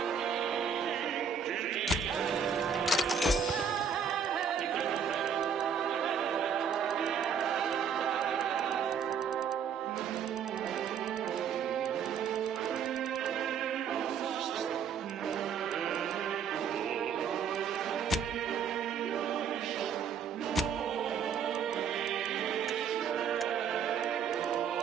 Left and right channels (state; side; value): quieter; left; 7.0 dB